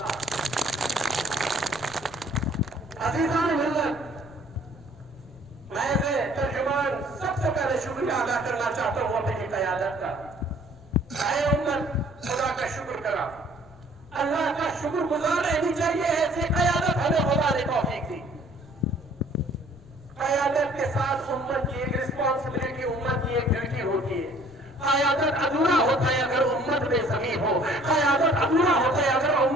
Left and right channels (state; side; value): noise; left; rumble, 24 dB below the sound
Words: عزیزان ملت، میں سے ترجمان سب سے پہلے شکریہ ادا کرنا چاہتا ہوں اپنی قیادت کا. اے امت، خدا کا شکر کرا، اللہ کا شکر گزار رہنی چاہیے. ایسی قیادت ہمیں خدا نے توفیق دی. قیادت کے ساتھ امت کی ایک رسپانسبلٹی، امت کی ایک ڈیوٹی ہوتی ہے. قیادت ادھورا ہوتا ہے اگر امت بے زمین ہو. قیادت ادھورا ہوتا ہے اگر